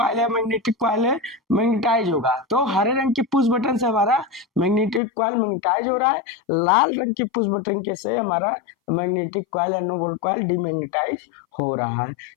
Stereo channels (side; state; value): right; drops out; at 5.0 s